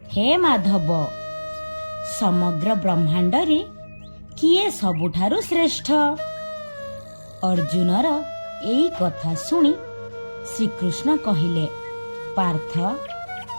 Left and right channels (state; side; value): inverted; both; correlation -1.00